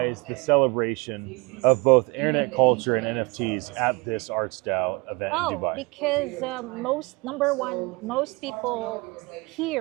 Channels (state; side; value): quieter; left; 27.1 dB